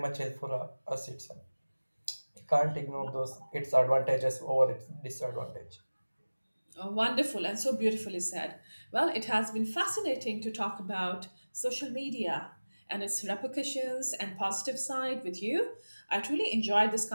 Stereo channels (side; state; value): both; inverted; correlation -1.00